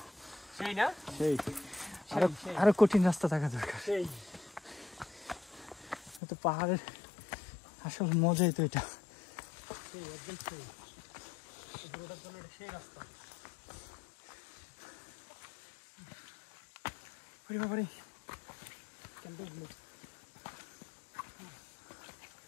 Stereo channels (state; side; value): drops out; right; at 6.2 s